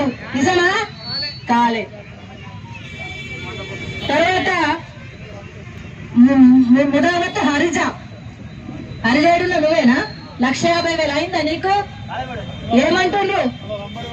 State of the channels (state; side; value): identical; both; correlation 1.00